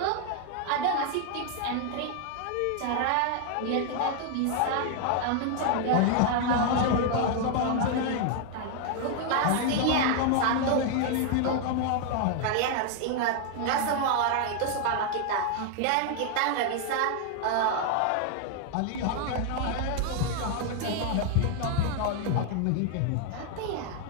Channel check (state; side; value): different; both; correlation 0.00